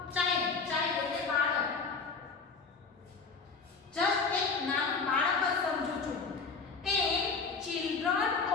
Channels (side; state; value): right; quieter; 4.8 dB